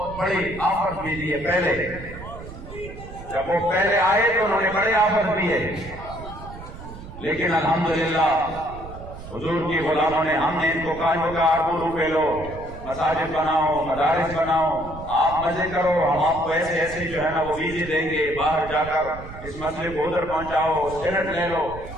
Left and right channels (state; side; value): noise; right; rumble, 13 dB below the sound